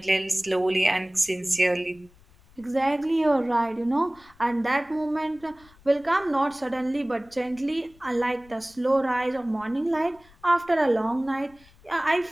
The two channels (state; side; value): noise; left; rumble, 27 dB below the sound